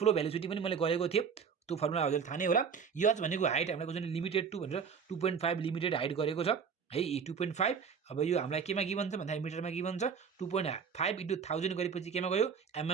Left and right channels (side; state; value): left; quieter; 6.4 dB